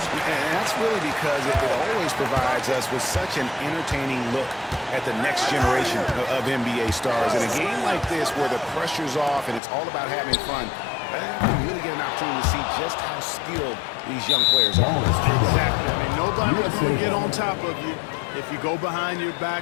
And that's really because it always provides us with such an entertaining look at the next generation of NBA stars. In a game like this where the pressure's off and it's all about having fun, you really get an opportunity to see just how skilled these young players are. Exactly. I mean, nobody's going to get on top of you if you go behind your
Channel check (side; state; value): right; drops out; at 9.6 s